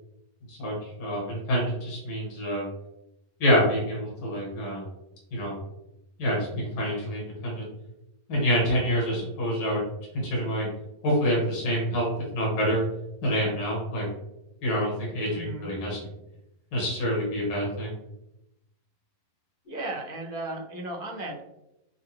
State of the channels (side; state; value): right; late; 11 ms